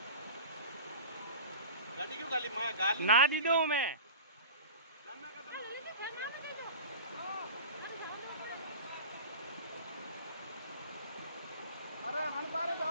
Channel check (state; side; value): inverted; both; correlation -0.36